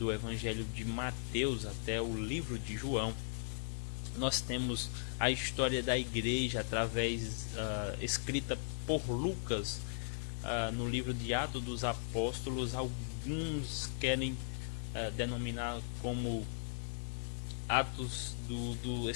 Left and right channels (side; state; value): right; silent; digital silence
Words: Evangelho de Mateus até o livro de João. Nós temos a história da igreja através escrita por Lucas no livro de Atos dos Apóstolos. Alguns querem denominar como Atos do